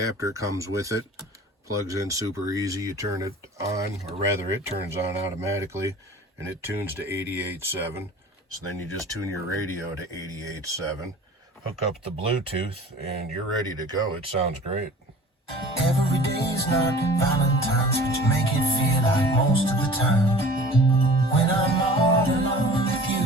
comes with it. Plugs in super easy. You turn it on, or rather it turns on automatically, and it tunes to 88.7. So then you just tune your radio to 88.7. Hook up the Bluetooth, and you're ready to go. It sounds great. Every day's not Valentine's, but you make it feel like most of the time. When I'm all alone with you,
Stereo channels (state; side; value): normal; both; correlation 0.44